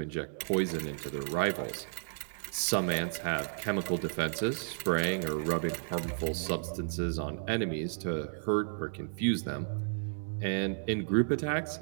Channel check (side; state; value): left; silent; digital silence